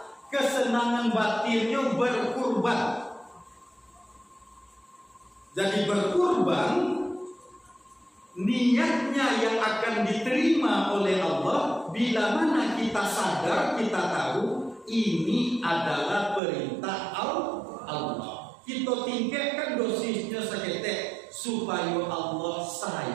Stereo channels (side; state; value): left; drops out; at 16.4 s